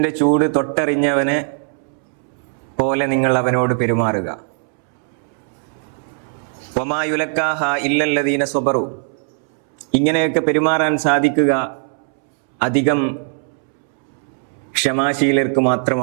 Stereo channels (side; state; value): left; silent; 66 dB below the other